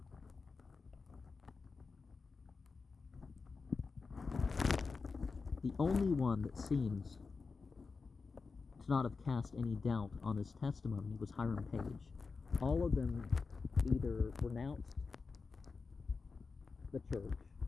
the only one that seems to not have cast any doubt on his testimony was Hiram Page. All of them either renounced the church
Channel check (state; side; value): quieter; right; 4.6 dB